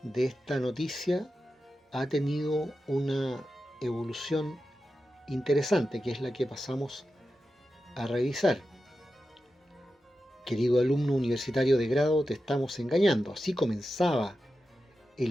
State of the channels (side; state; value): both; normal; correlation 0.91